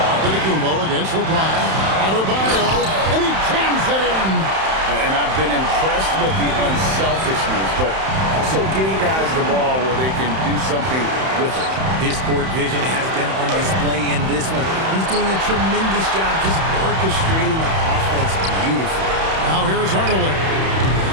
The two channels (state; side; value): late; left; 31 ms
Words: Antetokounmpo against LeBron. Adebayo, and he jams it in. And I've been impressed with the unselfishness, but also getting guys the ball where they can do something with it. His court vision has been on display in this one. He's doing a tremendous job just orchestrating the offense beautifully. Now here's Hardaway.